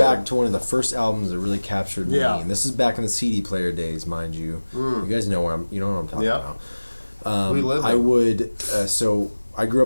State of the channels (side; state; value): both; inverted; correlation -1.00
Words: to one of the first albums that really captured me, Yeah. and this is back in the CD player days, mind you. You guys know what I'm talking Yeah. about. We lived I it. would. So I grew